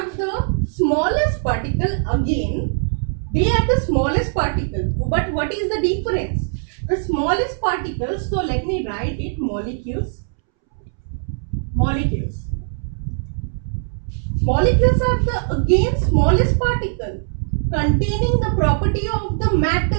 the smallest particle again. They are the smallest particle. But what is the difference? The smallest particle, so let me write it, molecules. Molecules. Molecules are the again smallest particle containing the property of the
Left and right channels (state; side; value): silent; left; 65 dB below the other